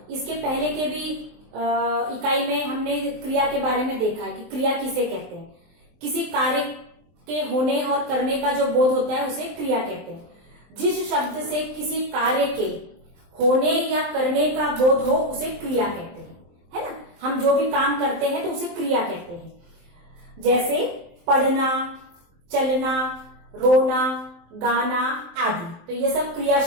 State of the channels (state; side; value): late; left; 23 ms